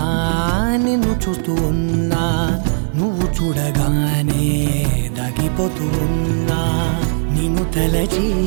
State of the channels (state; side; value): silent; left; digital silence